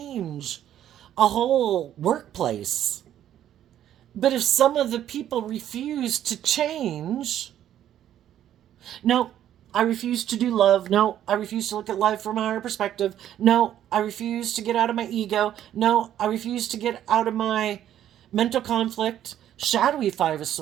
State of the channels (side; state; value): left; quieter; 11.2 dB